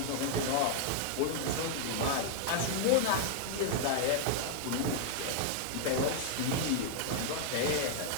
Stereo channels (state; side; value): different; both; correlation -0.01